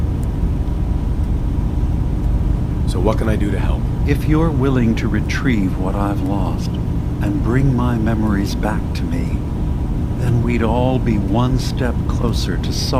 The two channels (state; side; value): identical; both; correlation 1.00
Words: So what can I do to help? If you're willing to retrieve what I've lost and bring my memories back to me, then we'd all be one step closer to